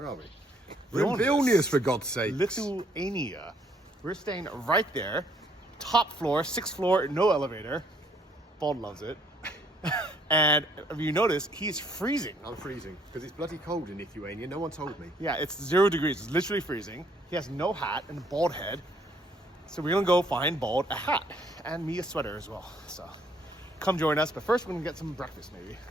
We're in Vilnius, for God's sake. Lithuania. We're staying right there. Top floor, 6th floor, no elevator. Bald loves it. And if you notice, he's freezing. I'm freezing because it's bloody cold in Lithuania. No one told me. Yeah, it's 0 degrees. It's literally freezing. He has no hat and a bald head. So we're gonna go find Bald a hat and me a sweater as well. So come join us. But first, we're gonna get some breakfast maybe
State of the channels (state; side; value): normal; both; correlation 0.65